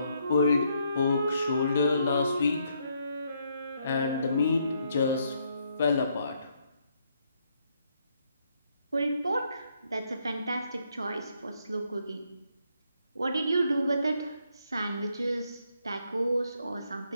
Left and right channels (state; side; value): inverted; both; correlation -0.74